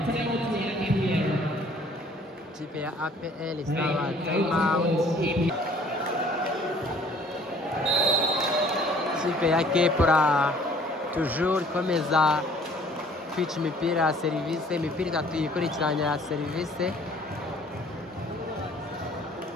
Ikipe ya APR isaba time out. Ikipe ya Kepra toujours ikomeza kwica imipira ya serivisi, imipira itatu yikurikiranya ya serivisi.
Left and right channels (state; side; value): normal; both; correlation 0.56